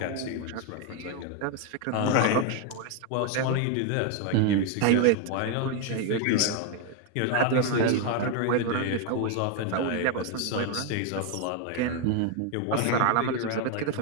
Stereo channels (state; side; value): different; both; correlation 0.01